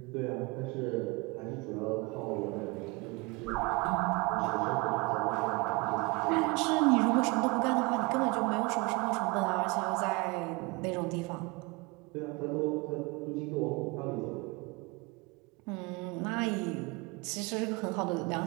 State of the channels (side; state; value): left; quieter; 26.0 dB